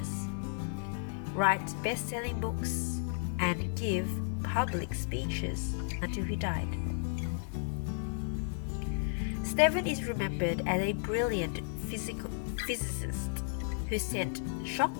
write best-selling books, and give public speeches until he died. Stephen is remembered as a brilliant physicist who sent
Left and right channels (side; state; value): right; silent; digital silence